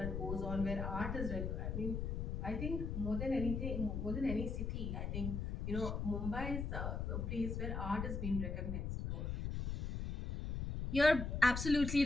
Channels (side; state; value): left; noise; rumble, 2 dB below the sound